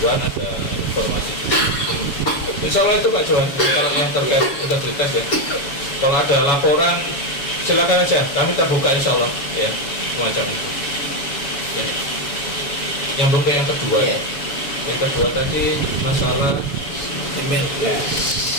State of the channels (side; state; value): right; late; 7.1 ms